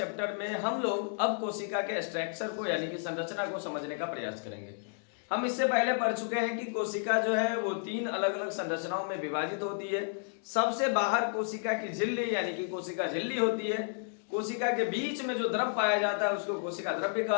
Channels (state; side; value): silent; right; digital silence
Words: में हम लोग अब कोशिका के स्ट्रक्चर को यानी कि संरचना को समझने का प्रयास करेंगे। हम इससे पहले पढ़ चुके हैं कि कोशिका जो है वो 3 अलग अलग संरचनाओं में विभाजित होती है। सबसे बाहर कोशिका की झिल्ली यानी कि कोशिका झिल्ली होती है। कोशिका के बीच में जो द्रव पाया जाता है उसको कोशिका द्रव्य